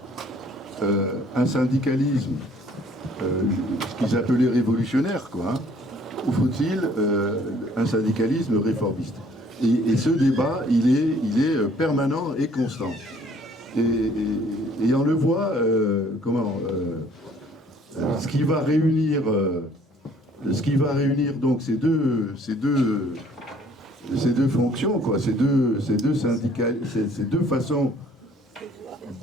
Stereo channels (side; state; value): both; normal; correlation 0.59